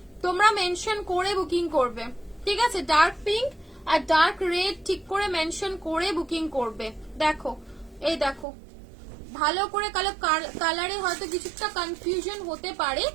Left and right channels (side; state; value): left; drops out; at 8.5 s